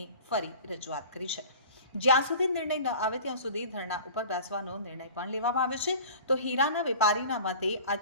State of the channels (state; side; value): inverted; both; correlation -0.42